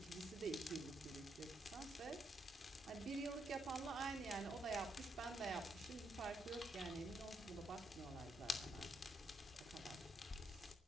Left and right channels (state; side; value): normal; both; correlation 0.78